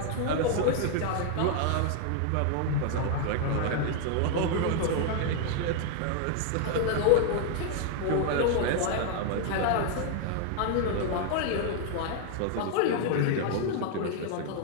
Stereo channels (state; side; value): different; both; correlation 0.00